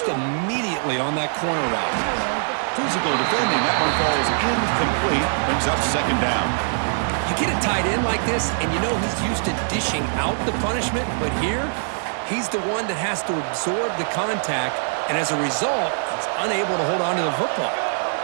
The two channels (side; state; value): left; silent; 60 dB below the other